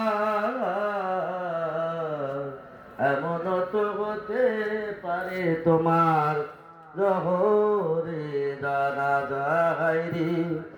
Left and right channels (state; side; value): identical; both; correlation 1.00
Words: এমন তো হতে পারে তোমার জহরে জানা যায় রে,